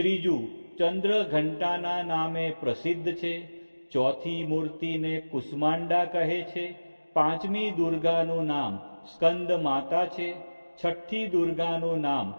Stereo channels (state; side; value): inverted; both; correlation -1.00